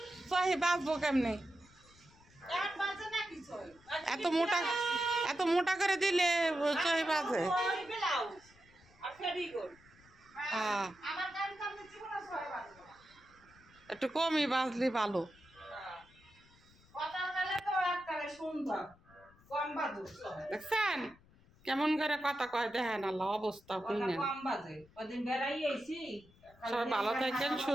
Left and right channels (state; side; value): noise; left; rumble, 27 dB below the sound